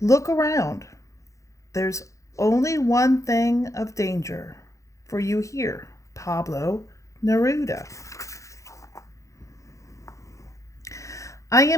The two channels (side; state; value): right; late; 0.15 ms